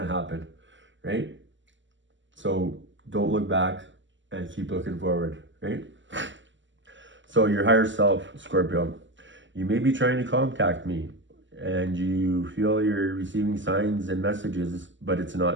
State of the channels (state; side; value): late; left; 0.54 ms